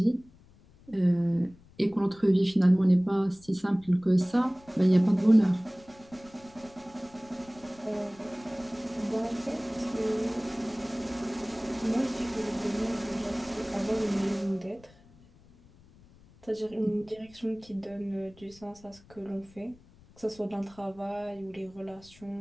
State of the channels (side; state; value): left; noise; rumble, 26 dB below the sound